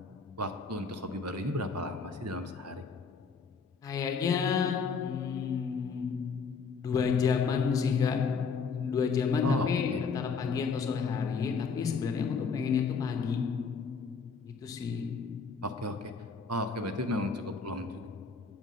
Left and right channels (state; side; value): quieter; right; 5.2 dB